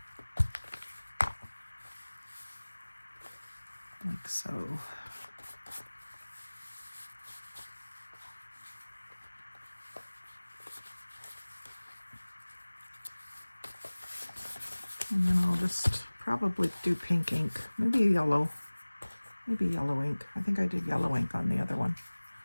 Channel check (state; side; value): inverted; both; correlation -1.00